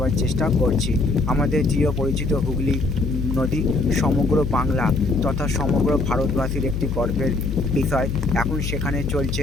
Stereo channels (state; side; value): noise; left; hum, 3 dB below the sound